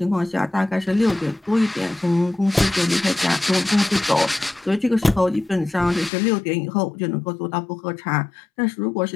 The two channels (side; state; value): right; drops out; at 6.1 s